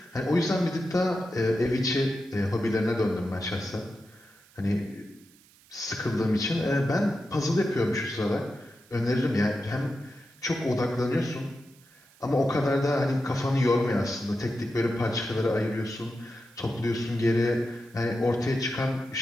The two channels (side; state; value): right; noise; hiss, 28 dB below the sound